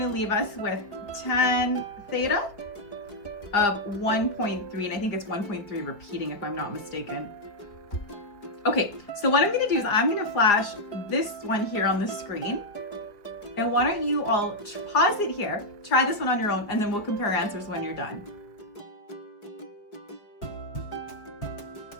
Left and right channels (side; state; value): right; late; 4.9 ms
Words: to leave us with tan theta of 1.3, and I think it's 1.3 repeating if I'm not mistaken. Okay, so what I'm going to do is I'm going to flash this one here on the screen. And why don't you all pause it here, try this one on your own, and then we'll compare answers when you're done.